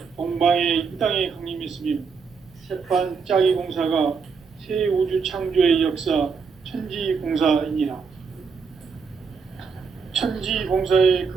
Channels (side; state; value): left; quieter; 5.5 dB